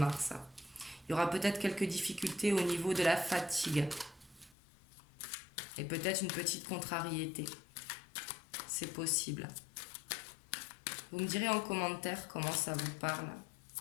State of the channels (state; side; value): drops out; right; at 4.5 s